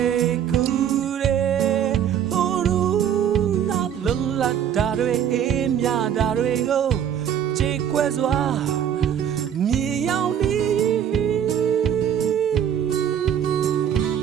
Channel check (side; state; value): left; quieter; 9.2 dB